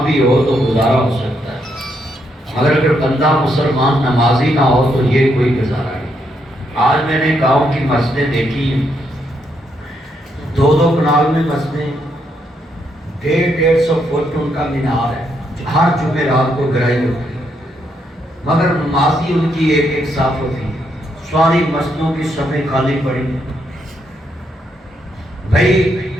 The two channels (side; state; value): both; normal; correlation 0.77